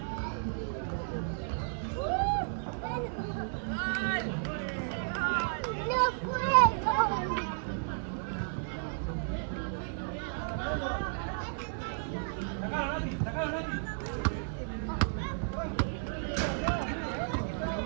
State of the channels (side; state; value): left; silent; digital silence